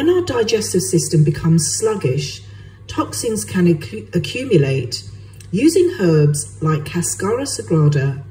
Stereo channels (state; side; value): identical; both; correlation 1.00